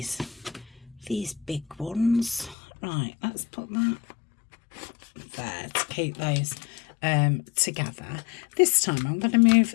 big ones. Right, let's put that there to keep those together. This time I'm going to move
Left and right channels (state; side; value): drops out; right; at 2.6 s